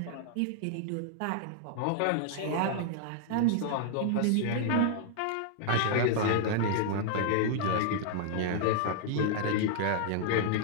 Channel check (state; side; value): different; both; correlation -0.01